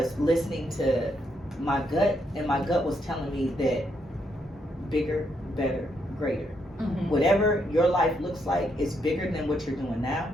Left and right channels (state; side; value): normal; both; correlation 0.77